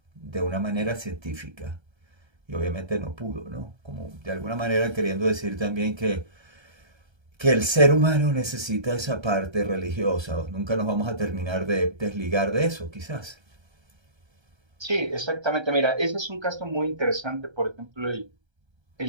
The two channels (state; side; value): late; left; 1.3 ms